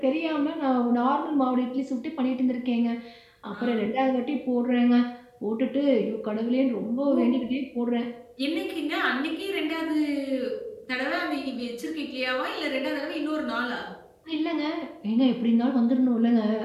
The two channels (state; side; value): identical; both; correlation 1.00